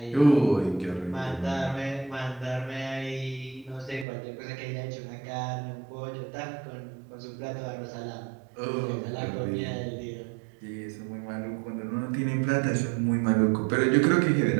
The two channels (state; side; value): drops out; left; at 4.0 s